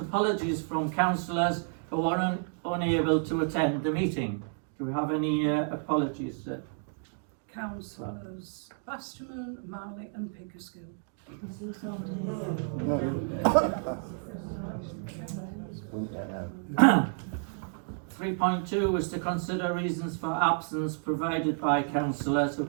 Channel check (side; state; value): left; silent; 57 dB below the other